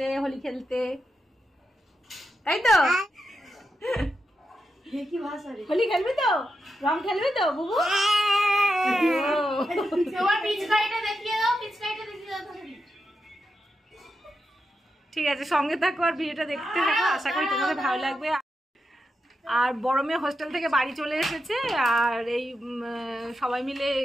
হোলি খেলতে, তাই তো? হোলি খেলবি তো? রং খেলবি তো বুবু? ঠিক আছে, সঙ্গে থাকো আর ভিডিওটা দেখতে থাকো। আশা করি তোমাদের ভালো লাগবে। আর বড় মেয়ে হোস্টেল থেকে বাড়ি চলে এসেছে। আর এই সবাই মিলে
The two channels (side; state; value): both; normal; correlation 0.87